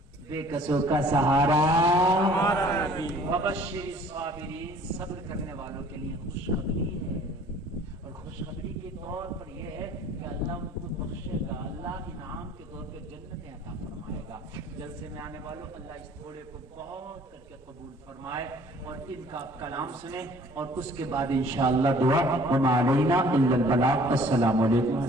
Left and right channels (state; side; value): normal; both; correlation 0.53